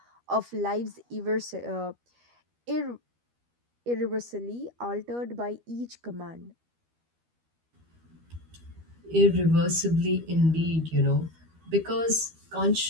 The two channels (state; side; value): late; left; 12 ms